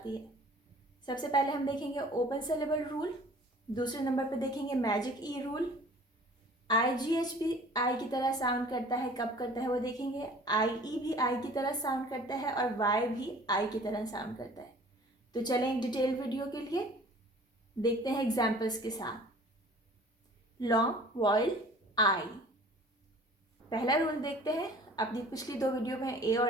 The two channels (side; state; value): both; normal; correlation 0.49